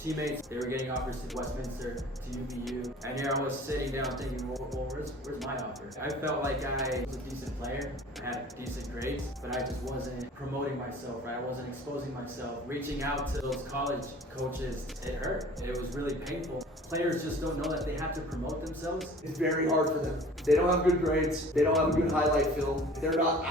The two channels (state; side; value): normal; both; correlation 0.46